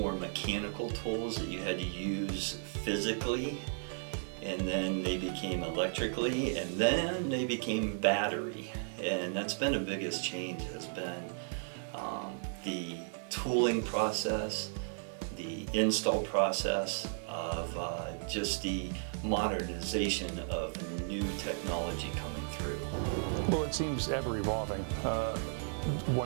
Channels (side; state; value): left; silent; digital silence